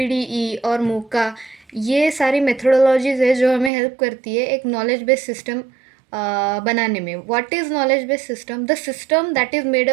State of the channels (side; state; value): left; drops out; at 3.7 s